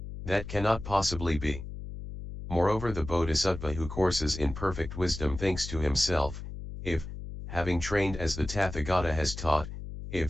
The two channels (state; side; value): noise; left; hum, 9 dB below the sound